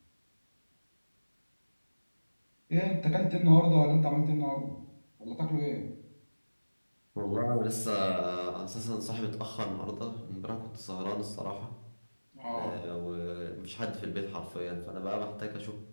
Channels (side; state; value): both; inverted; correlation -1.00